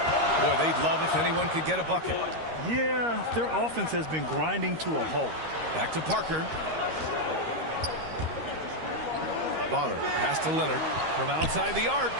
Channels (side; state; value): left; late; 13 ms